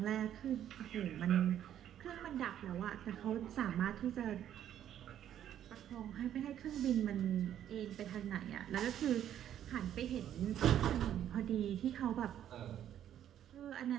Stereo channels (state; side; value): quieter; left; 10.7 dB